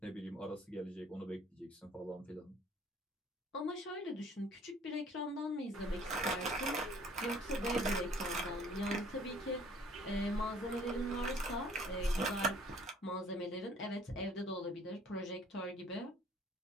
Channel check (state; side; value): normal; both; correlation 0.55